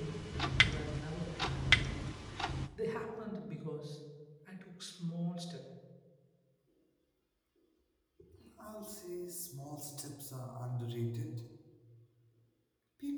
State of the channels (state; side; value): identical; both; correlation 1.00